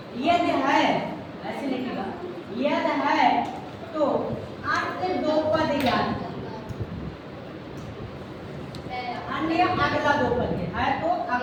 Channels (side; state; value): both; identical; correlation 1.00